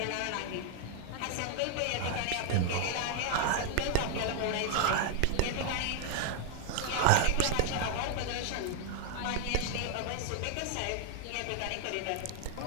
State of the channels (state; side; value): different; both; correlation 0.00